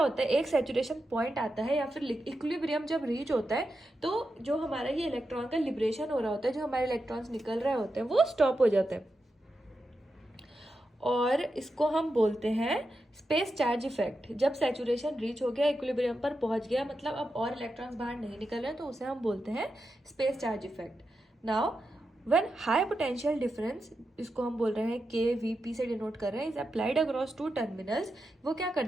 है, एक सैचुरेशन पॉइंट आता है या फिर इक्विलिब्रियम जब रीच होता है तो जो हमारा ये इलेक्ट्रॉन का लिबरेशन हो रहा होता है, जो हमारे इलेक्ट्रॉन्स निकल रहे होते हैं वो स्टॉप हो जाते हैं और इसको हम बोलते हैं स्पेस चार्ज इफेक्ट। जब सैचुरेशन रीच हो गया, इक्विलिब्रियम पर पहुंच गया, मतलब अब और इलेक्ट्रॉन्स बाहर नहीं निकल रहे हैं, तो उसे हम बोलते हैं space charge effect. Now when high potential difference, इसको हम बोल रहे हैं KVP से डिनोट कर रहे हैं, इज अप्लाइड अक्रॉस 2 टर्मिनल्स। वो क्या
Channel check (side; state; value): both; normal; correlation 0.88